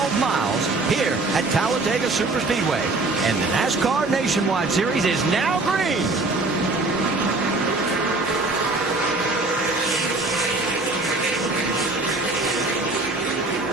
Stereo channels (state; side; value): quieter; left; 3.2 dB